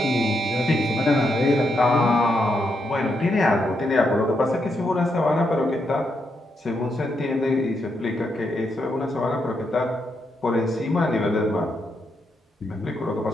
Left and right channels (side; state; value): both; normal; correlation 0.80